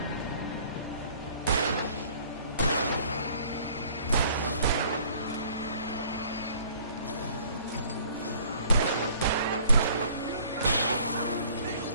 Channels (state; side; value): inverted; both; correlation -0.55